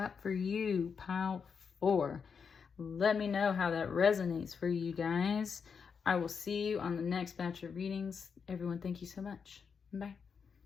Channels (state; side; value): quieter; right; 6.1 dB